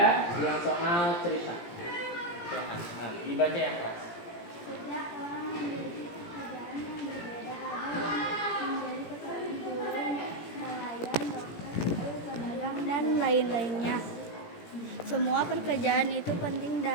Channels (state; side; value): late; right; 17 ms